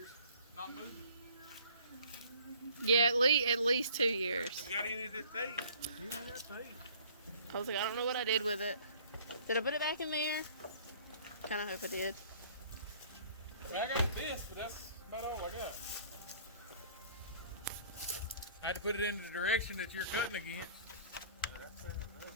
not moving. Yeah, at least 2 years. You got any of this tape? Yeah, I got tape. I was like, I don't know what I did with it. Did I put it back in there? Kind of hope I did. I got this, but that's about all I got. I had to put it into the direction that you're cutting against.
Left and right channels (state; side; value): inverted; both; correlation -0.53